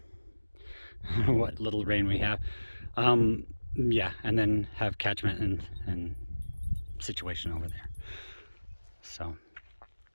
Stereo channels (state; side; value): inverted; both; correlation -1.00